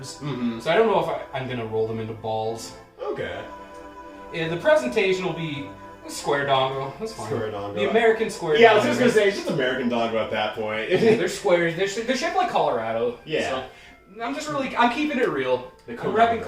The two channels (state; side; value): identical; both; correlation 1.00